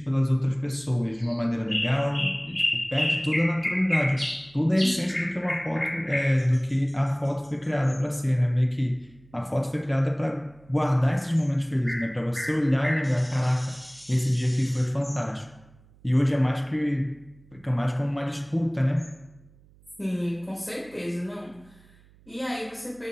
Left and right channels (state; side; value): noise; right; hum, 28 dB below the sound